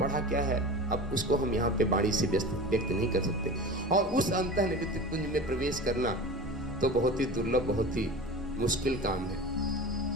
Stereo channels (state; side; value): normal; both; correlation 0.33